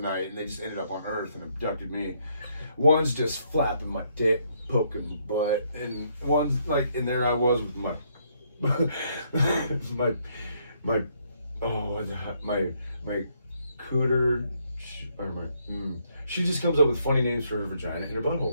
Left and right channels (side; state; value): both; inverted; correlation -0.72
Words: and they just ended up on Earth and abducted me. One's just flapping my dick, poking my butt, and one's like, and there I was with my my cooter or my. She just comes up with funny names for her vagina and her